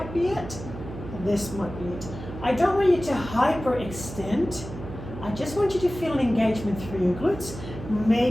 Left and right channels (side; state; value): right; noise; hum, 11 dB below the sound